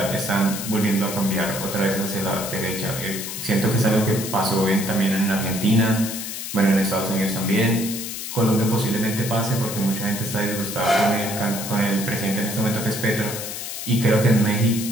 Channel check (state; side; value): noise; left; hiss, 7 dB below the sound